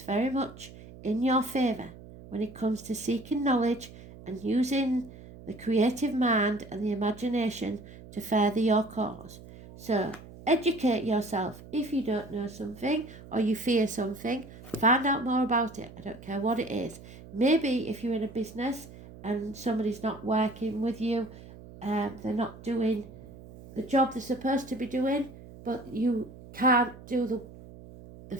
very much in your favour when it comes to seeking knowledge and using the creative mind and the imagination to further your cause. So educate yourself. If you don't know something or you fear something, find out more about it. I don't care what it is. Maybe if you're in a business and somebody's not working with you, they're not doing the job they're supposed to be doing, but you can't do the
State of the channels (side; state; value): right; noise; hum, 17 dB below the sound